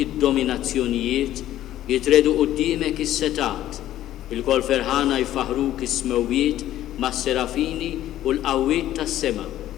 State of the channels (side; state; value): right; quieter; 13.1 dB